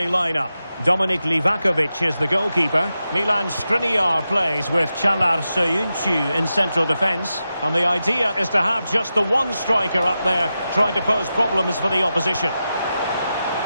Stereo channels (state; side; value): inverted; both; correlation -0.90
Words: lineup. Dominik Livakovic is the goalkeeper. Milan Skriniar plays with Çağlar Söyüncü in central defence. And the idea is to have just the one striker up there trying to pose problems for the opposition.